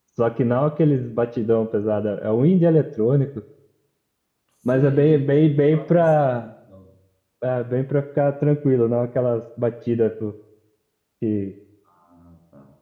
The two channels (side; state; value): both; identical; correlation 1.00